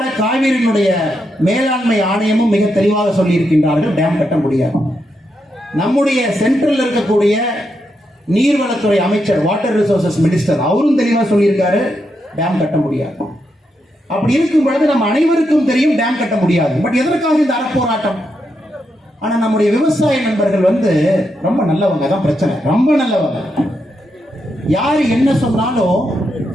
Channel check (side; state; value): both; normal; correlation 0.83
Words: காவிரியினுடைய மேலாண்மை ஆணையமும் மிக தெளிவாக சொல்லி இருக்கின்றார்கள், டேம் கட்ட முடியாது. நம்முடைய சென்ட்ரல் இருக்கக்கூடிய நீர்வளத்துறை அமைச்சர், வாட்டர் ரிசோர்சஸ் மினிஸ்டர், அவரும் தெளிவாக சொல்லியிருக்காரு, டேம் கட்ட முடியாது. அப்படி இருக்கும் பொழுது நம்ம அனைவருக்கும் தெரியும் டேம் கட்ட முடியாது. பட் எதற்காக இந்த அறப்போராட்டம்? ஆனா நம்முடைய விவசாய நண்பர்கள் ரொம்ப நல்லவங்க, தான் பிரச்சனை, ரொம்ப நல்லவங்க. யாரு என்ன சொன்னாலும்